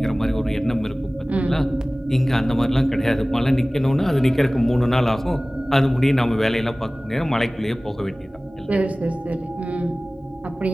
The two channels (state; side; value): normal; both; correlation 0.98